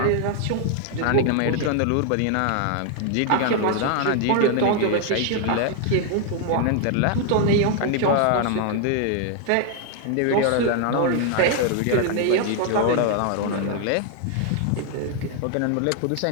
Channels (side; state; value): both; different; correlation 0.00